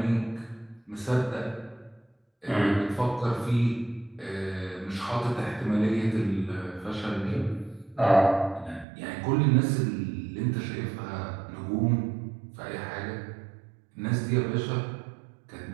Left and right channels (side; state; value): left; drops out; at 8.8 s